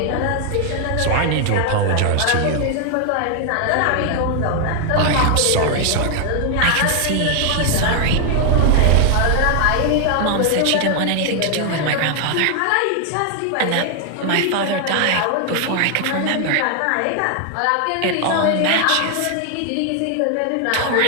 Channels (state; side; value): different; both; correlation 0.00